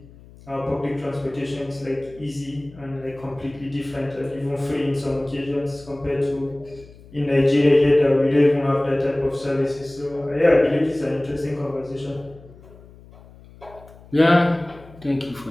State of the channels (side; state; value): left; noise; hum, 22 dB below the sound